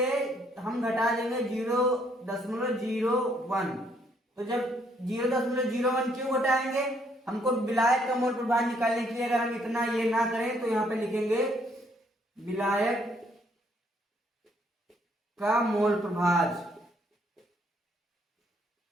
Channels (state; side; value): normal; both; correlation 0.69